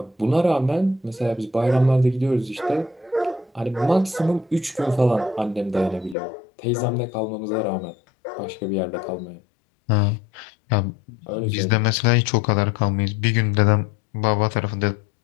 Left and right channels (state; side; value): drops out; right; at 6.2 s